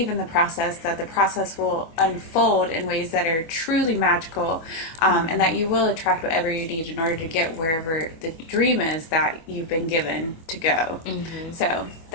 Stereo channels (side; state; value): right; late; 25 ms